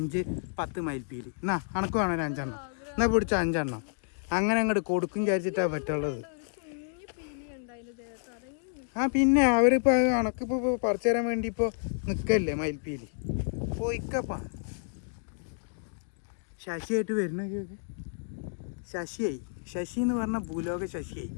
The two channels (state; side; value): silent; right; digital silence